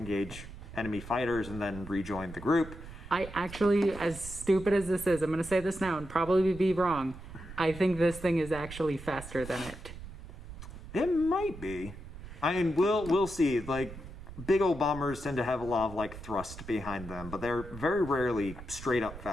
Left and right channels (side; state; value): right; noise; rumble, 13 dB below the sound